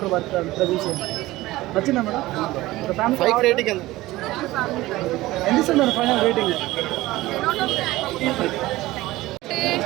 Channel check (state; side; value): quieter; left; 18.0 dB